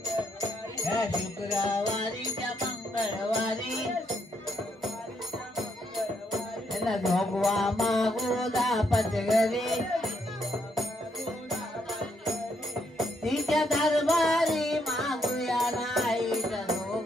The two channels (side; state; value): both; normal; correlation 0.74